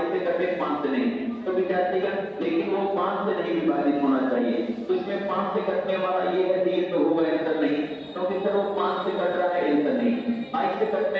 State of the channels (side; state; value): both; identical; correlation 1.00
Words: से कटे 5 से नहीं, तो विद्यार्थीगण लेकिन वो 5 से नहीं विभाजित होना चाहिए, तो इसमें 5 से कटने वाला ये है, ये तो होगा आंसर नहीं, क्योंकि सर वो 5 से कट रहा है, आंसर नहीं। 22 से